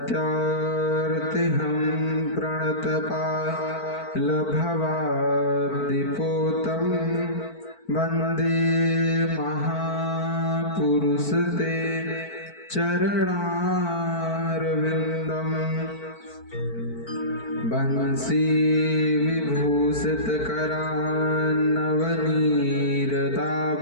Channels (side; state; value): right; late; 4.5 ms